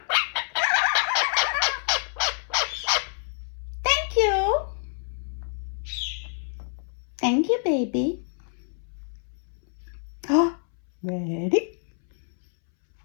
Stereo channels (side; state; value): right; silent; 60 dB below the other